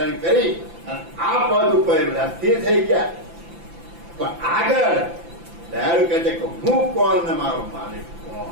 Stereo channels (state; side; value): late; left; 5.9 ms